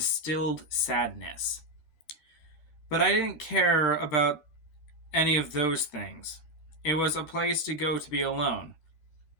sadness. But I didn't care about any of those things. It was a place to go to be alone.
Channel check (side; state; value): right; late; 12 ms